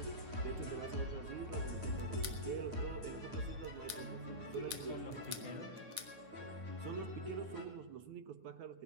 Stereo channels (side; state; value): left; late; 9.6 ms